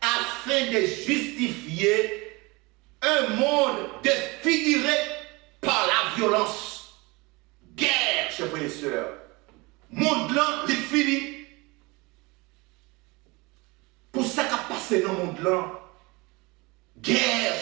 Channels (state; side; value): quieter; left; 24.8 dB